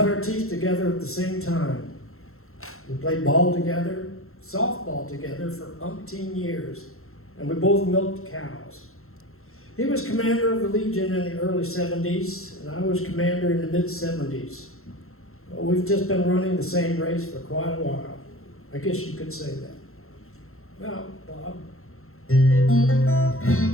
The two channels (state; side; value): late; right; 0.62 ms